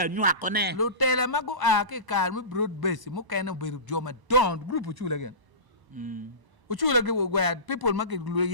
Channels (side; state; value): left; late; 1.0 ms